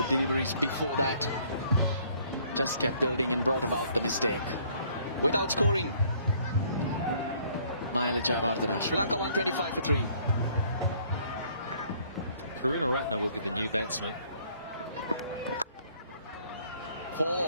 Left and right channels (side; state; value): both; inverted; correlation -0.61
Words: deliveries before that just kept building and brought about the mistake. Without scoring, Mahela Jayawardena. Sri Lanka 125 for 3. Karunaratne will be the new batsman.